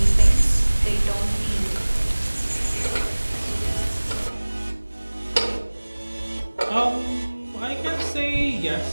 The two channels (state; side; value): inverted; both; correlation -1.00